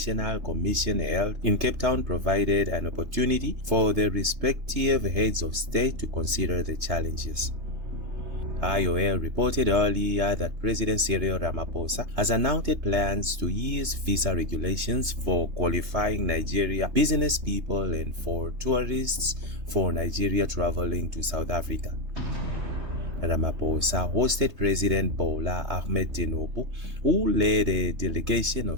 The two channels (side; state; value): left; late; 3.3 ms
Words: Commission held in Cape Town provided an opportunity for the respective heads of state to consider the challenges. IOL reported earlier that President Cyril Ramaphosa has announced plans to ease visa regulations for qualifying Nigeria business people and for tourists for Nigeria traveling to South Africa. Ramaphosa hosted President Bola Ahmed Tinubu, who led a delegation